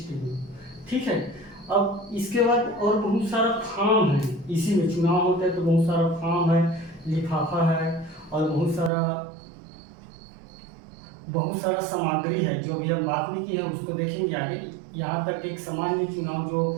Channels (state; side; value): drops out; left; at 8.9 s